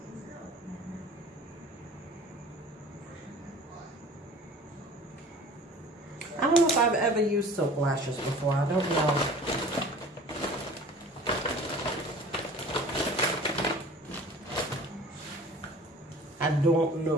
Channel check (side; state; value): both; normal; correlation 0.44